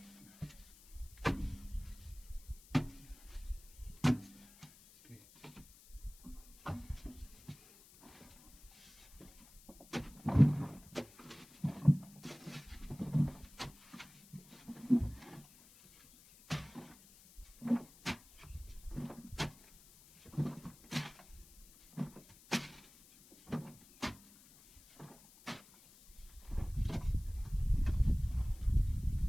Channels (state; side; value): noise; left; hiss, 23 dB below the sound